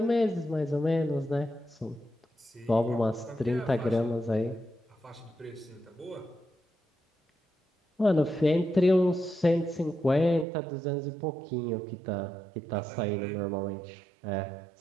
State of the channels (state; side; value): drops out; left; at 10.5 s